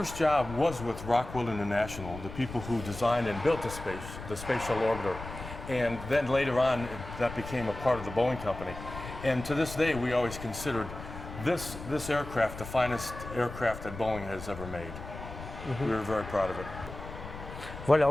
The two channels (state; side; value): noise; left; rumble, 11 dB below the sound